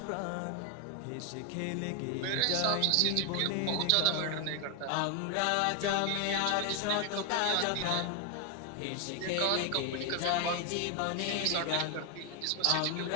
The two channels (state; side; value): different; both; correlation 0.00